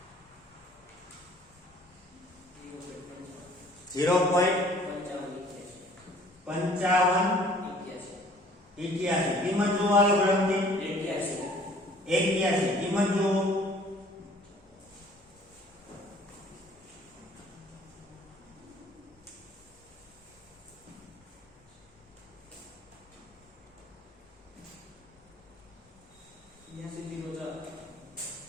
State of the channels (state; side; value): normal; both; correlation 0.54